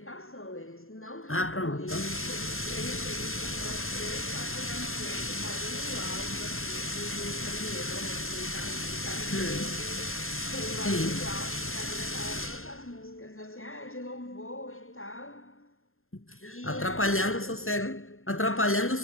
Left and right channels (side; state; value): right; late; 0.61 ms